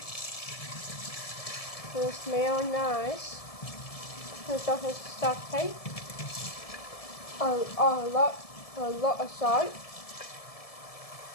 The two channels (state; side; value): late; right; 1.7 ms